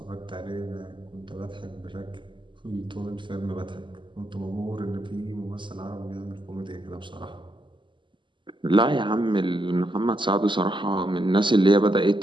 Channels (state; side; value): late; left; 0.24 ms